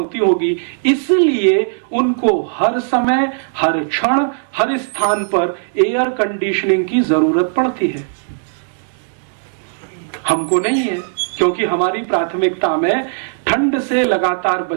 होगी। इसलिए उनको हर समय, हर क्षण, हर स्थान पर एयर कंडीशनिंग की जरूरत पड़ती है। हमको नहीं है, क्योंकि हमारी प्राथमिकता में ठंड से लगातार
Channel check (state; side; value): silent; left; 68 dB below the other